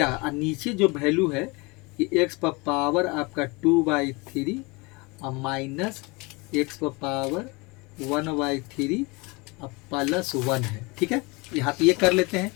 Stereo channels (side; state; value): right; quieter; 26.5 dB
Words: और नीचे जो वैल्यू है कि x पर पावर आपका 2/3 और माइनस x पर पावर 1/3 और +1 है, ठीक है। यहाँ तो ये कर लेते हैं,